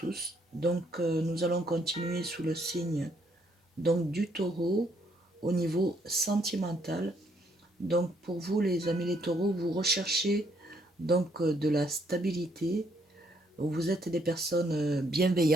Donc nous allons continuer sous le signe donc du taureau au niveau sentimental. Donc pour vous les amis les taureaux, vous recherchez donc de la stabilité. Vous êtes des personnes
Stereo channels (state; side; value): normal; both; correlation 0.70